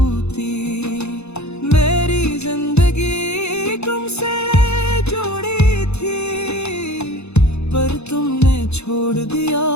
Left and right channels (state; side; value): late; right; 0.81 ms